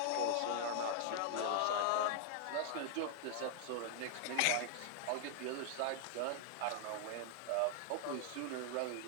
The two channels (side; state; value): both; different; correlation -0.01